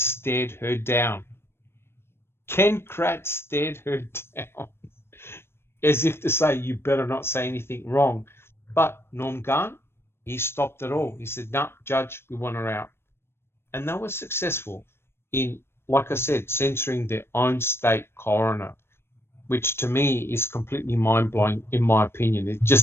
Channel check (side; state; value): right; late; 0.12 ms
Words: her down. Ken Kratz stared her down as if to say, you better not say anything wrong. But Norm Garn, he stopped it all. He said, no, Judge, we want her out. And they were successful in, like I said, censoring their own state coroner, which to me is completely mind-blowing, in my opinion. It